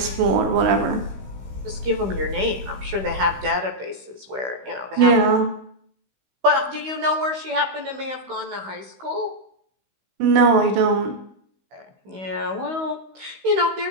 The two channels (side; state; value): left; late; 16 ms